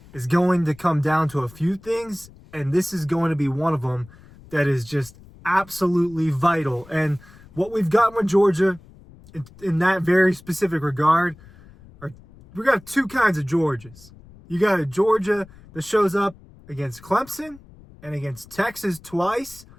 is going to come down to a few things, and this is going to be one of them that is just absolutely vital. And what we've gotten with Georgia in that very specific regard we got two kinds of Georgias. You got a Georgia that shows up against Clemson and against Texas twice.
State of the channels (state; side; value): noise; left; rumble, 23 dB below the sound